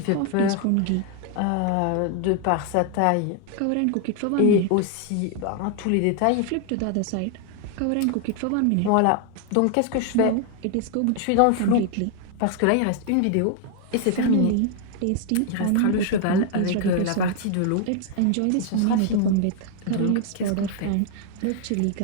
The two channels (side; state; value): both; different; correlation 0.00